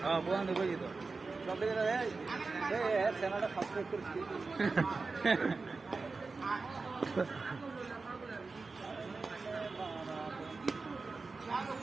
হ্যাঁ বোন বুঝি তো। সব থেকে চ্যানেলটা সাবস্ক্রাইব করছি।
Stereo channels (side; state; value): left; quieter; 4.0 dB